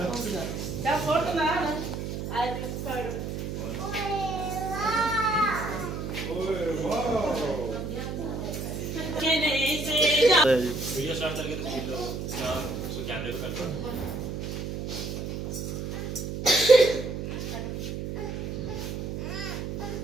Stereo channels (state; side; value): noise; right; hum, 5 dB below the sound